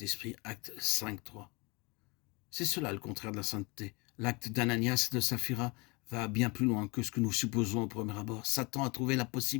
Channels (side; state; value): right; quieter; 27.4 dB